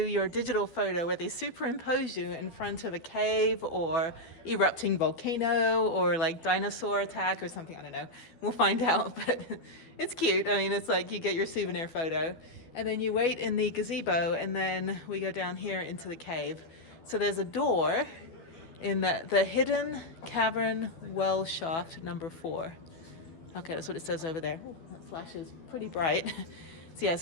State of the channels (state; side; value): late; right; 12 ms